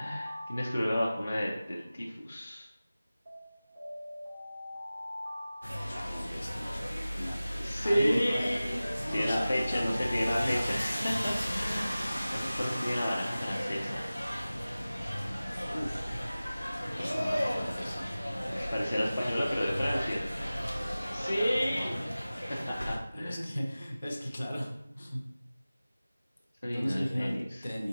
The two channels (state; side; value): inverted; both; correlation -0.97